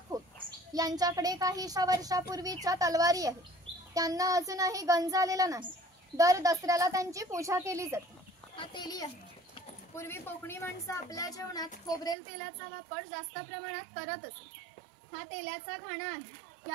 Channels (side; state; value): left; drops out; at 12.2 s